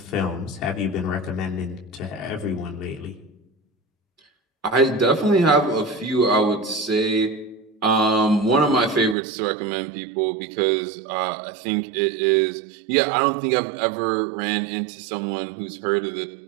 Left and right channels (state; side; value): drops out; left; at 9.2 s